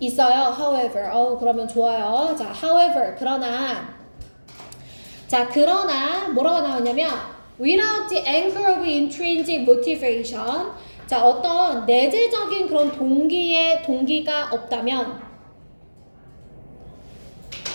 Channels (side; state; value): both; inverted; correlation -1.00